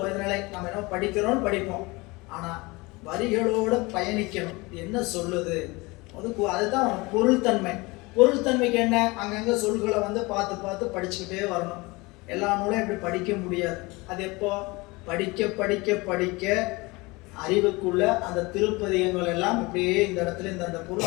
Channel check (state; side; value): quieter; right; 24.0 dB